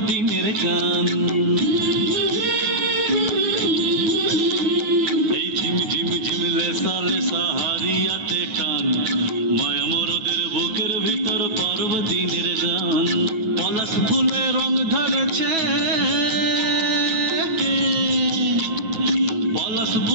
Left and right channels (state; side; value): late; left; 9.2 ms